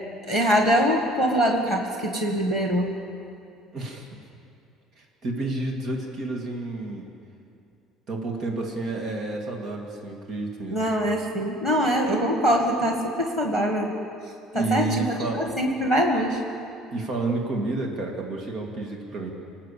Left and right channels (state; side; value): normal; both; correlation 0.52